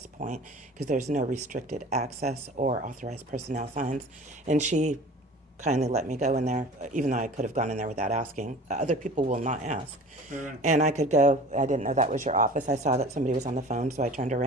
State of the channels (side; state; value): both; normal; correlation 0.41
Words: point, because there's no restricted access or authorized personnel signs. And she kindly let me go in there, even though I could have gone in there without asking. Other people will not ask. Right. And I could go, I didn't know that was your office. I saw that somebody was on the phone, so I turned